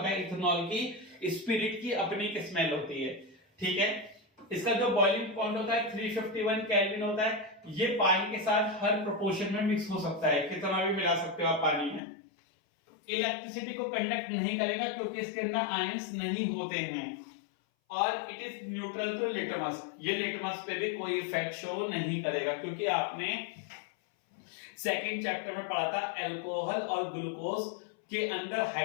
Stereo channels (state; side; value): drops out; right; at 12.0 s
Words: है इथेनॉल की स्पिरिट की अपनी एक स्मेल होती है। ठीक है, इसका जो बॉइलिंग पॉइंट होता है 351 केल्विन होता है। ये पानी के साथ हर प्रोपोर्शन में मिक्स हो सकता है, कितना भी मिला सकते हो आप पानी में। इलेक्ट्रिसिटी को कंडक्ट नहीं करेगा क्योंकि इसके अंदर आयंस नहीं होते हैं, और it is neutral to litmus, ये लिटमस पे भी कोई इफेक्ट शो नहीं करेगा, क्योंकि आपने सेकंड चैप्टर में पढ़ा था अल्कोहल और ग्लूकोज के अंदर